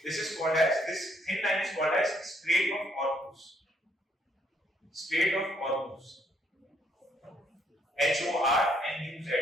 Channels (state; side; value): normal; both; correlation 0.70